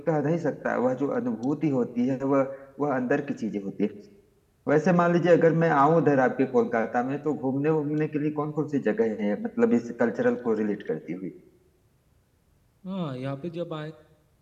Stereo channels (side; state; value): both; identical; correlation 1.00